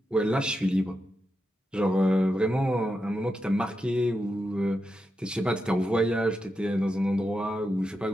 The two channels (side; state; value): both; normal; correlation 0.87